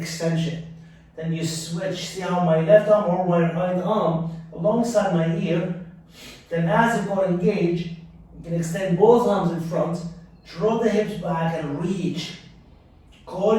Then you switch. See how my left arm or my right arm alongside my ear. Then as the core engage, you can extend both arms in front, draw the hips back and reach. Core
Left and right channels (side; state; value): both; identical; correlation 1.00